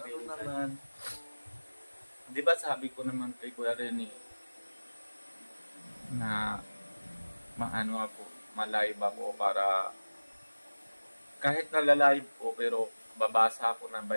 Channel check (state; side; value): inverted; both; correlation -1.00